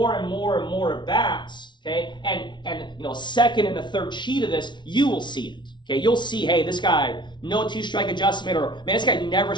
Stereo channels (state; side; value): late; right; 0.22 ms